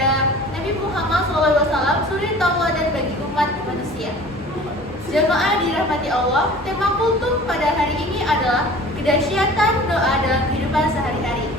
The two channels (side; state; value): both; normal; correlation 0.44